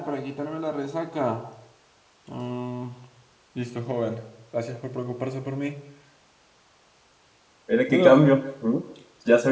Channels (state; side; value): identical; both; correlation 1.00